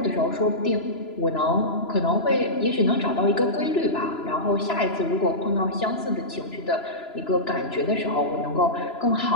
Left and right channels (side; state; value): right; late; 3.0 ms